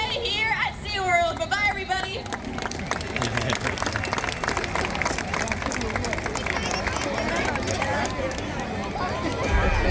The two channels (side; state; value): both; identical; correlation 1.00